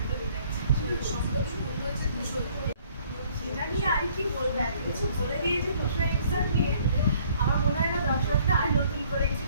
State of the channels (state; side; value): inverted; both; correlation -0.60